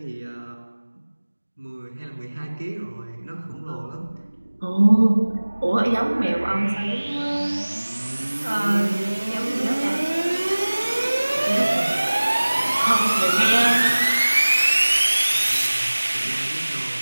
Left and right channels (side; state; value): both; inverted; correlation -1.00